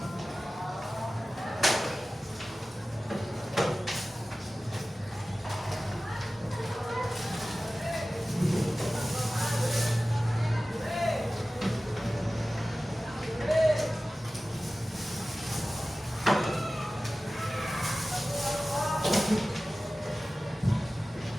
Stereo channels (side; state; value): both; normal; correlation 0.96